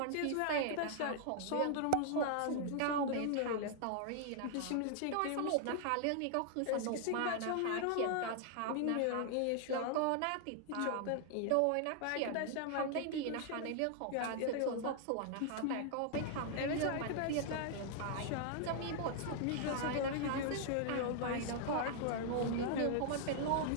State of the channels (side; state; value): both; different; correlation 0.00